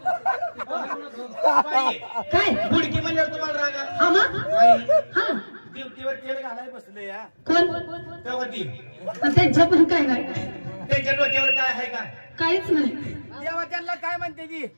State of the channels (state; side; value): inverted; both; correlation -1.00